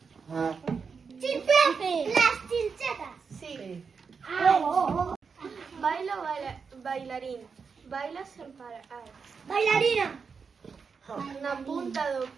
Las chinchetas. Sí. Sí. Baila o bailarín. Baila sen parar. Bailarina. Na punta do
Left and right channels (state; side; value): quieter; left; 5.6 dB